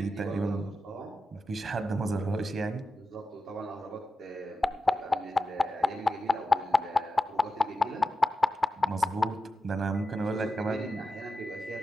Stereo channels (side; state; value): both; normal; correlation 0.90